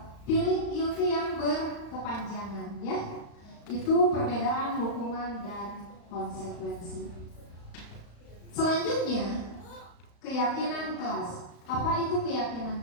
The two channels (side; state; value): right; late; 35 ms